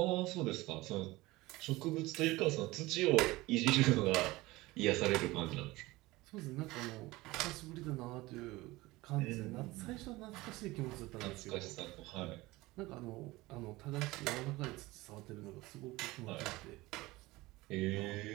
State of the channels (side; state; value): left; quieter; 20.2 dB